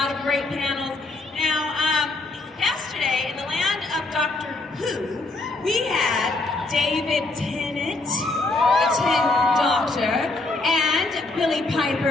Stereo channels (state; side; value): quieter; right; 3.2 dB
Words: of great panels. Now, yesterday, in the land of Doctor Who, we had David Tennant, the 10th Doctor, and Billie